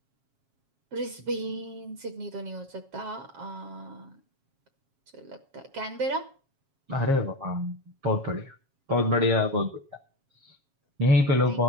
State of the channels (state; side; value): late; left; 7.4 ms